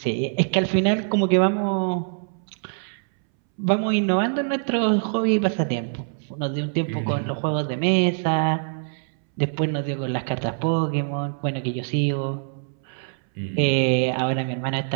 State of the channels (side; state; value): left; silent; 62 dB below the other